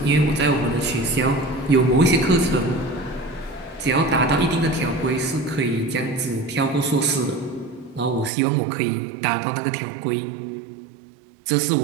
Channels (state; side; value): drops out; left; at 8.3 s